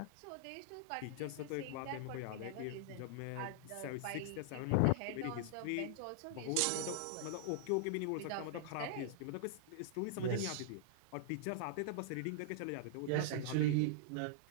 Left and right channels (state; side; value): different; both; correlation -0.01